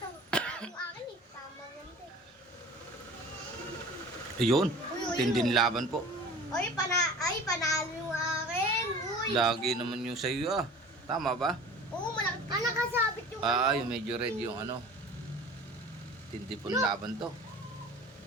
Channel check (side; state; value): both; normal; correlation 0.42